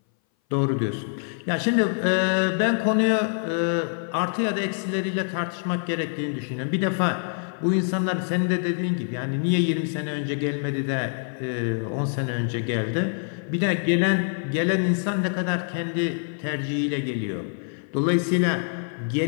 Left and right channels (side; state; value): right; silent; 59 dB below the other